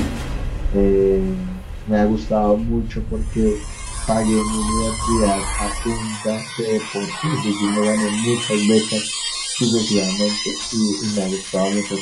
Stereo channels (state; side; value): identical; both; correlation 1.00